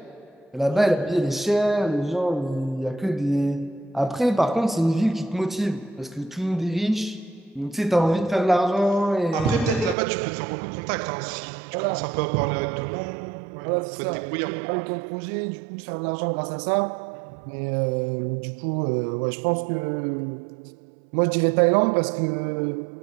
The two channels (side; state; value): left; drops out; at 10.0 s